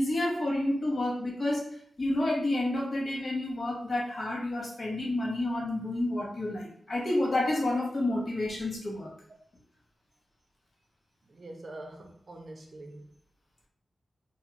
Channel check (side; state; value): both; normal; correlation 0.93